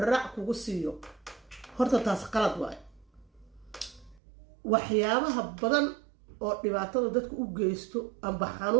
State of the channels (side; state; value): left; drops out; at 4.2 s